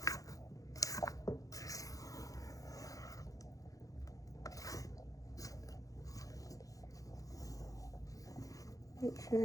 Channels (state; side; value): late; right; 0.17 ms